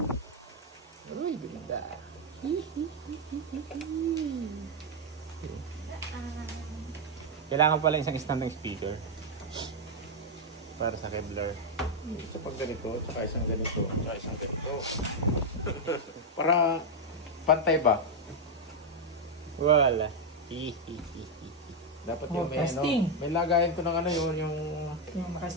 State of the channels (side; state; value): both; normal; correlation 0.01